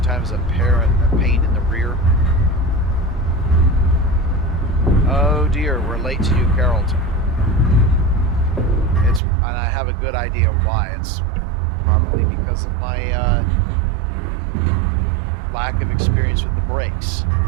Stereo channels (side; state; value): left; drops out; at 9.2 s